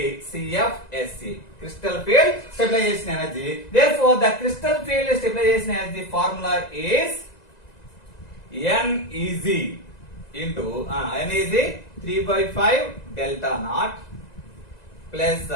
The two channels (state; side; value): late; right; 1.9 ms